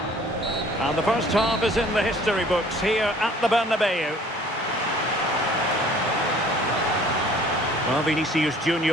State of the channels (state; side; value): normal; both; correlation 0.53